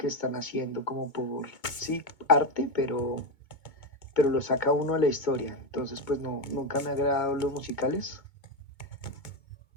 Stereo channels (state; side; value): late; right; 2.2 ms